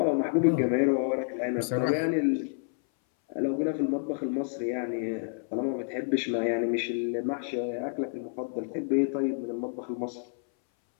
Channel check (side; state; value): right; silent; 59 dB below the other